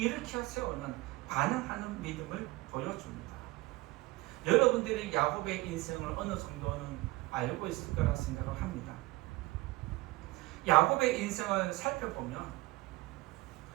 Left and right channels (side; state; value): left; quieter; 20.8 dB